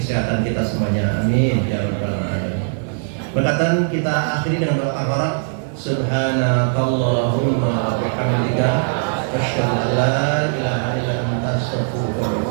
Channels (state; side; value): silent; left; 55 dB below the other